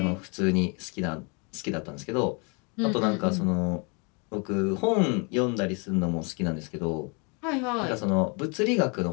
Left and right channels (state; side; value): quieter; right; 33.1 dB